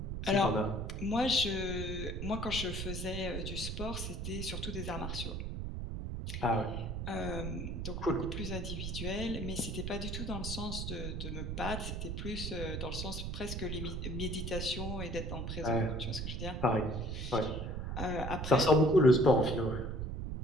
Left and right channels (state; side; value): noise; right; rumble, 4 dB below the sound